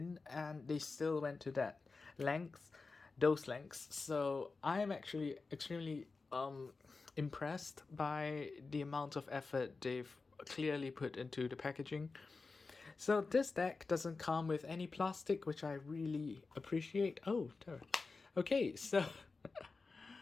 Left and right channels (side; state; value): right; quieter; 4.1 dB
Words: and they still went to that length, those lengths. So I am actually extremely impressed by the amount of effort they've clearly put into the packaging. So this deck doesn't come with any plastic, which I really appreciate. Oh, okay, so